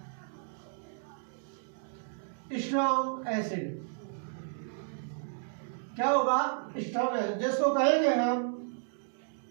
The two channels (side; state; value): left; silent; digital silence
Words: स्ट्रॉन्ग एसिड। क्या होगा? स्ट्रॉन्ग एसिड, जिसको कहेंगे हम